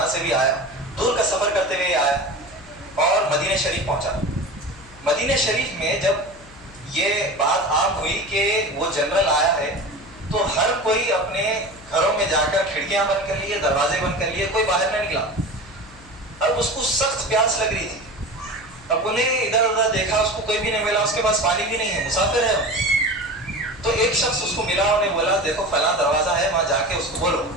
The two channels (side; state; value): left; noise; hum, 23 dB below the sound